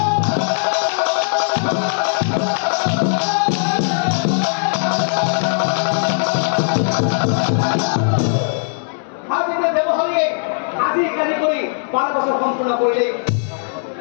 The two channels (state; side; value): silent; right; 67 dB below the other